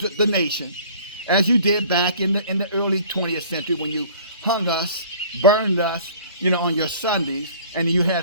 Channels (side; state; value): both; inverted; correlation -0.49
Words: nation, as you did back in the early 20th century when you hung us, burned us, you know, on your Sundays, and you